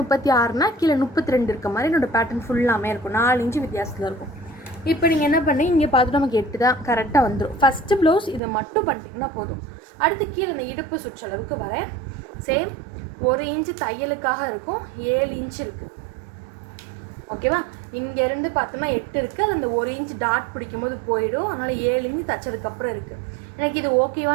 கீழே 32 இருக்க மாதிரி என்னோடய பேட்டர்ன் ஃபுல்லாமே இருக்கும். 4 இன்ச்சு வித்தியாசத்தில் இருக்கும். இப்போ நீங்கள் என்ன பண்ணி இங்கே பார்த்துட்டு நமக்கு 8 தான் கரெக்டாக வந்துடும். ஃபஸ்ட்டு ப்ளவுஸ் இதை மட்டும் பண்ணிட்டீங்கன்னா போதும். அடுத்து கீழே இந்த இடுப்பு சுற்றளவுக்கு வரேன். சேம் 1 இன்ச்சு தையலுக்காக இருக்கும், 7 இன்ச்சு இருக்குது. ஓகேவா? இங்கேருந்து பார்த்தோம்னா 8 இருக்குது, அது அந்த 1 இன்ச்சு டாட் பிடிக்கும்போது போயிடும். அதனால் 7 இன்ச்சு தைச்சதுக்கப்புறம் இருக்குது. எனக்கு இது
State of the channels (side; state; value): left; drops out; at 8.4 s